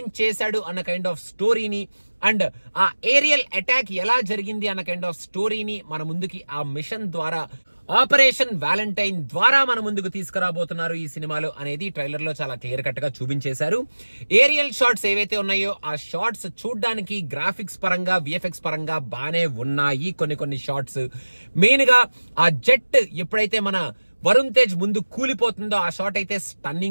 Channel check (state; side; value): inverted; both; correlation -1.00